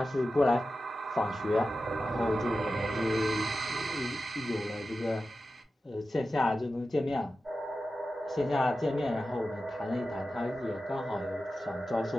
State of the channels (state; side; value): normal; both; correlation 0.93